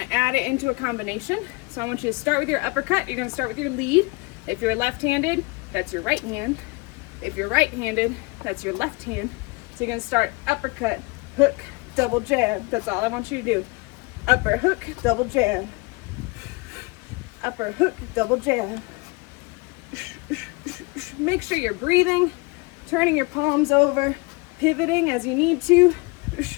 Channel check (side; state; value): right; quieter; 27.6 dB